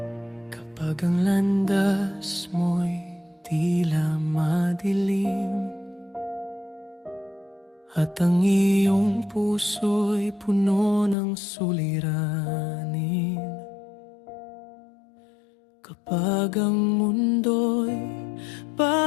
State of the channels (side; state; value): right; drops out; at 11.2 s